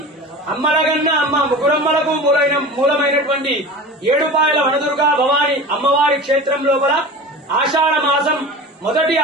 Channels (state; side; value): normal; both; correlation 0.34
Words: అమ్మలగన్న అమ్మ ముగ్గురమ్మలకు మూలమైనటువంటి ఏడుపాయల వనదుర్గా భవానీ అమ్మవారి క్షేత్రం లోపల ఆషాఢ మాసం మొదటి